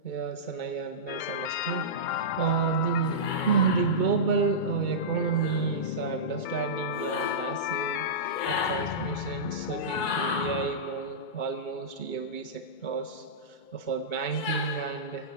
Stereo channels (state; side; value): late; right; 2.2 ms